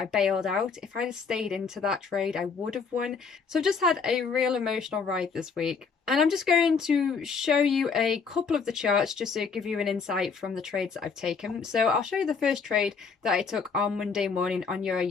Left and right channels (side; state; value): right; quieter; 5.4 dB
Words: bailed out. If I'd have stayed into that trade, I would have won. So I've just had a real emotional ride this week. And I'm just going to show you a couple of the charts just to give you an insight from the trades that I've taken. So I'll show you the first trade that I took on Monday morning on Euro